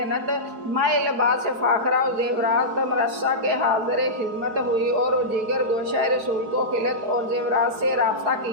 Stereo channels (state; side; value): late; left; 4.7 ms